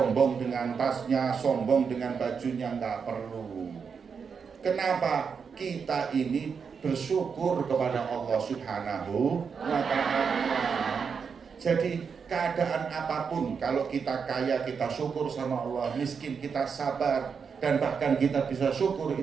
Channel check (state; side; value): quieter; left; 6.1 dB